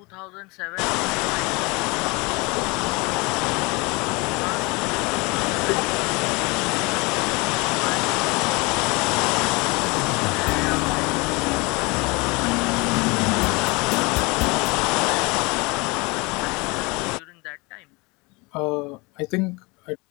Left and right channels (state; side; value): quieter; right; 26.6 dB